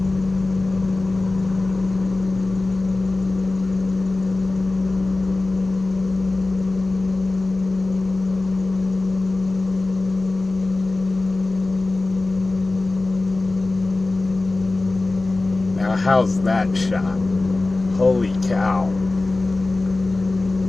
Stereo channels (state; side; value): quieter; right; 3.2 dB